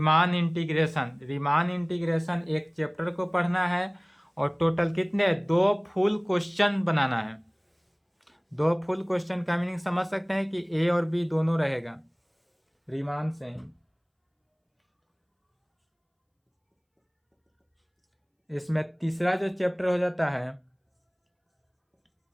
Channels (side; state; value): both; identical; correlation 1.00